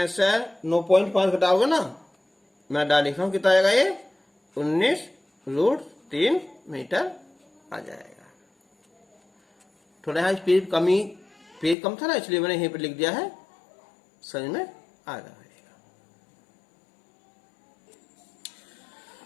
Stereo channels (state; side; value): drops out; right; at 11.8 s